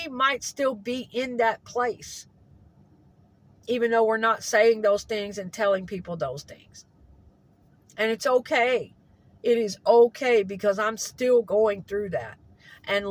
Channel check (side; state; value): both; identical; correlation 1.00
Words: might still be in that place, even though we're not saying those things and telling people those things. And it's okay. It is okay, because I'm still going through that and